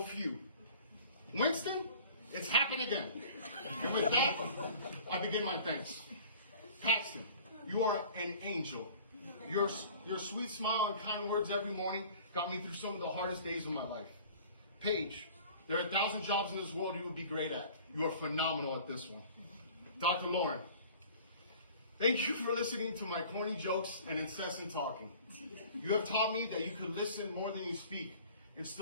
few." Winston, it's happened again. And with that, I begin my thanks. Paxton, you are an angel. Your sweet smile and kind words every morning got me through some of the hardest days of my life. Paige, there are 1,000 jobs in this world you would be great at. You are phenomenal at this one. Dr. Lauren, thank you for listening to my corny jokes and incessant talking. You have taught me that you could listen more than you speak and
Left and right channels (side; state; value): both; inverted; correlation -0.46